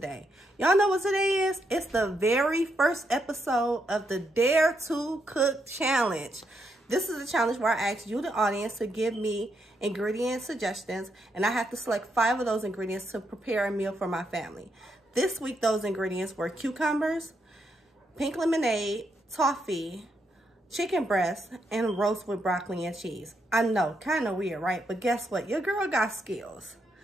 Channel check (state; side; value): normal; both; correlation 0.79